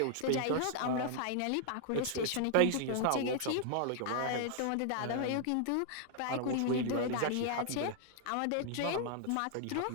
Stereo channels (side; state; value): both; different; correlation 0.00